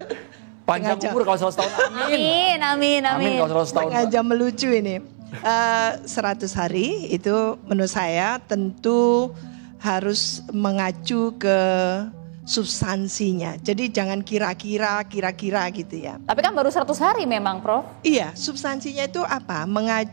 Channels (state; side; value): silent; left; 64 dB below the other